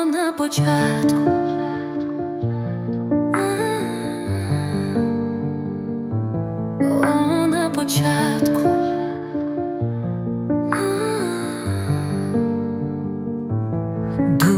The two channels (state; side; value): identical; both; correlation 1.00